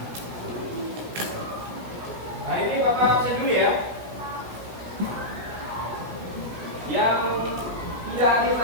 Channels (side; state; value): left; late; 17 ms